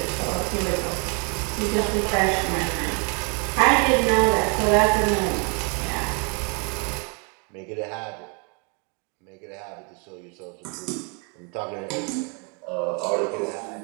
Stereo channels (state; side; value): quieter; left; 35.0 dB